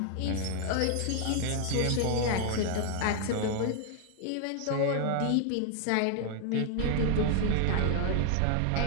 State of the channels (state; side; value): different; both; correlation 0.00